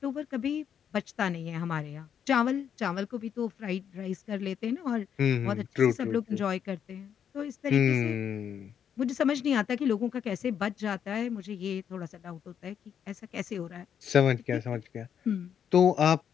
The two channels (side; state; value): right; quieter; 8.4 dB